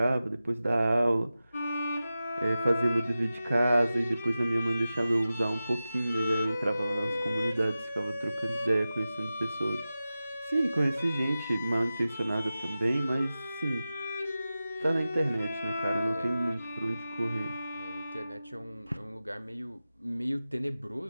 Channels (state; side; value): inverted; both; correlation -0.94